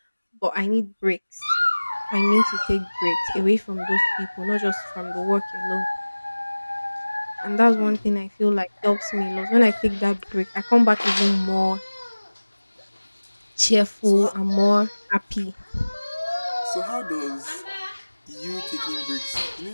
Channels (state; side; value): inverted; both; correlation -1.00